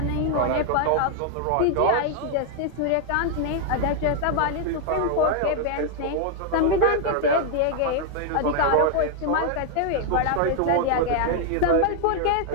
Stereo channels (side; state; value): both; different; correlation 0.00